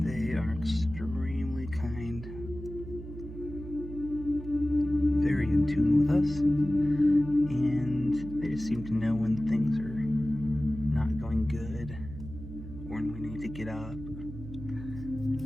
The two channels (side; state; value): right; noise; hum, 11 dB below the sound